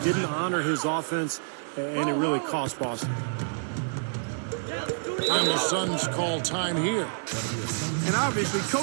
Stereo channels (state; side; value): silent; left; 59 dB below the other